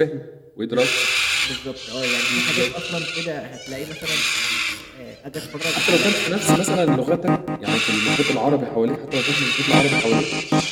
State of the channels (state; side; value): identical; both; correlation 1.00